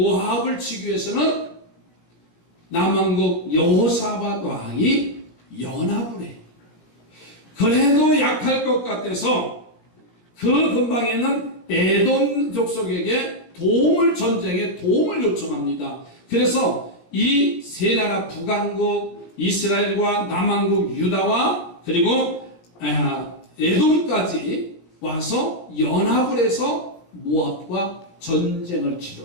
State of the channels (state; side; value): late; right; 17 ms